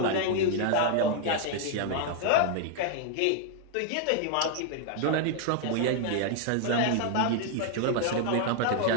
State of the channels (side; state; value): both; different; correlation 0.00